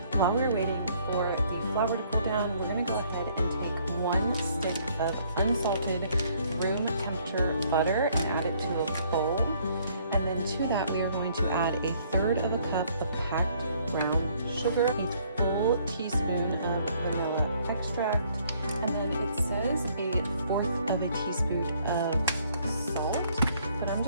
While we're waiting for flour to cool down, we're going to go ahead and take 1 stick of unsalted room temperature butter and add it to a bowl. And then to that, we are going to add 1/3 of a cup of packed brown sugar, a full teaspoon of vanilla extract, and then it says 1/4 of a teaspoon of salt, but I'm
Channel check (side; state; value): both; inverted; correlation -0.63